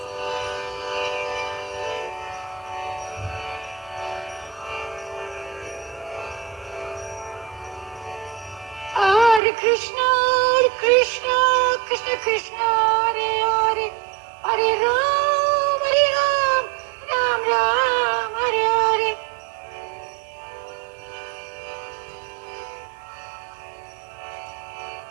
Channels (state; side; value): drops out; left; at 9.4 s